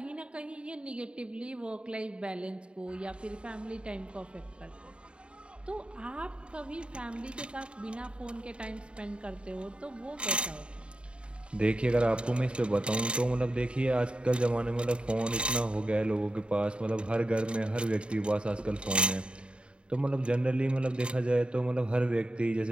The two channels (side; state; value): left; late; 0.055 ms